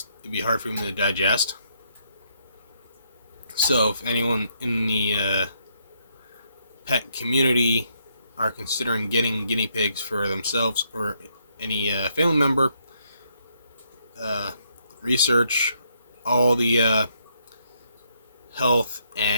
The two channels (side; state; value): both; inverted; correlation -0.74